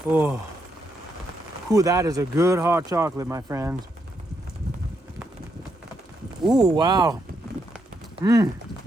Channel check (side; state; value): both; normal; correlation 0.79